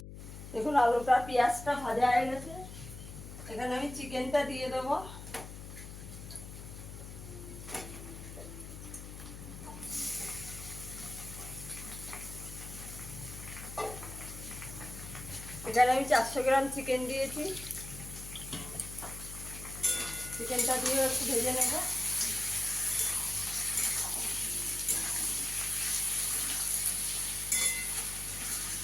দেখুন, আলুটা পেঁয়াজটা ভাজা হয়ে গেছে। এখানে আমি চিকেনটা দিয়ে দেবো। এখানে আমি 400 গ্রাম চিকেন দিয়েছি। চিকেনটা দিয়ে একটু ভেজে নেব।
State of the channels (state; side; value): noise; left; hum, 11 dB below the sound